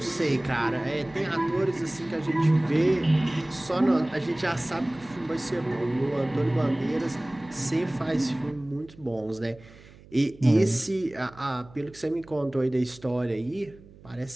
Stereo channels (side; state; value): right; noise; hum, 22 dB below the sound